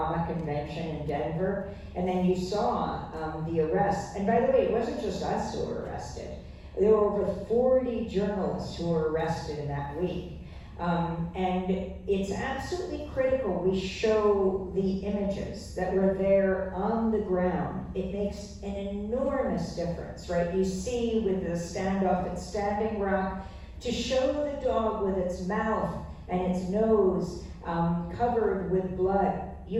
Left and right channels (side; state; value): both; identical; correlation 1.00